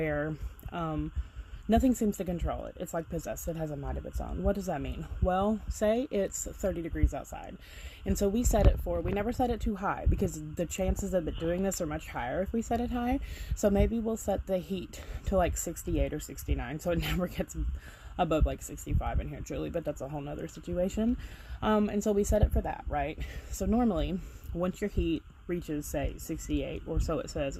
nothing seems to control it. It's like possessed. It has a mind of its own. What does that mean? Well, say it's 30 degrees outside. And so we never set it too high because the chances of it doing this are much higher if we set it high. So maybe we'll set the heat to like 68 or 69 so it never gets above like 65 in here, truly, but that's a whole nother situation. And so we set it for that, right? So normally, once your heat reaches, say, 68, or so it says,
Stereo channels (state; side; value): identical; both; correlation 1.00